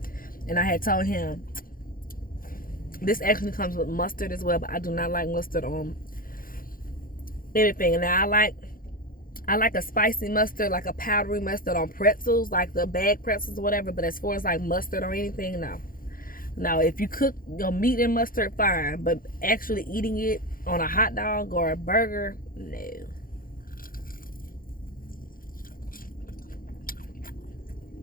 And I had told him This actually comes with mustard as well, but I do not like mustard on anything. And now I like a spicy mustard, like a powdery mustard on pretzels, like the bag pretzels or whatever. But as far as like mustard or anything, no. Now, if you cook your meat in mustard, fine. But actually eating it on a hot dog or a burger, no.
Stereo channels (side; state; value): right; late; 0.41 ms